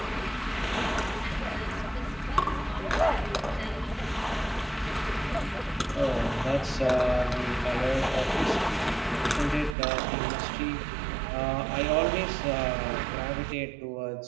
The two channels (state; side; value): drops out; left; at 9.8 s